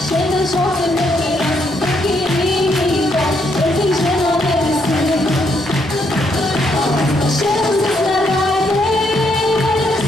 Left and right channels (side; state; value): both; normal; correlation 0.75